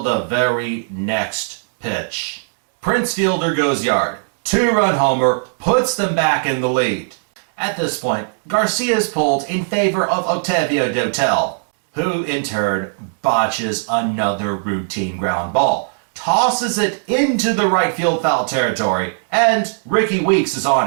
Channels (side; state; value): left; silent; digital silence